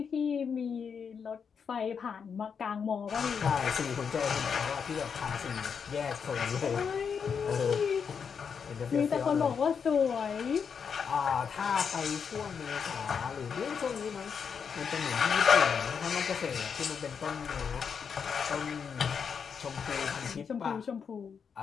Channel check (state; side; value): quieter; right; 6.5 dB